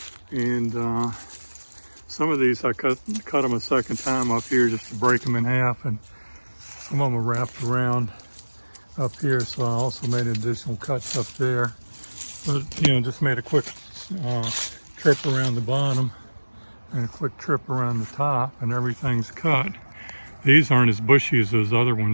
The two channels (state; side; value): inverted; both; correlation -1.00